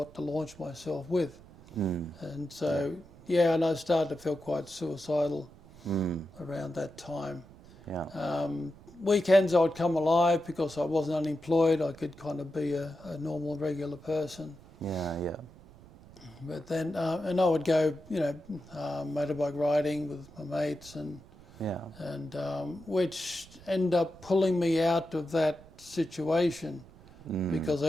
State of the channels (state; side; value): noise; right; rumble, 22 dB below the sound